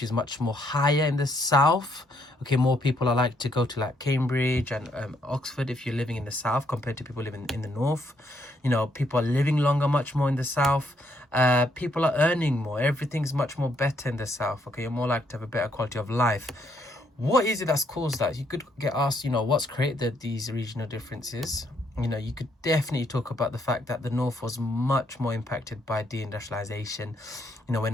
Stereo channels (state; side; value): normal; both; correlation 0.72